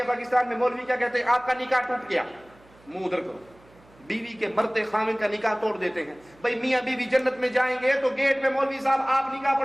پاکستان میں مولوی کیا کہتے ہیں, آپ کا نکاح ٹوٹ گیا, منہ ادھر کرو. بیوی کے مرتے خامن کا نکاح توڑ دیتے ہیں. بھائی میاں بیوی جنت میں جائیں گے تو گیٹ میں مولوی صاحب آپ نکاح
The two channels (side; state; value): right; noise; hum, 28 dB below the sound